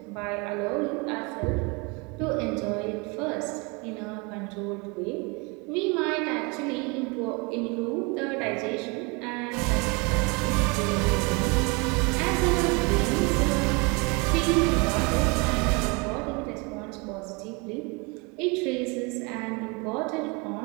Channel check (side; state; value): left; quieter; 29.4 dB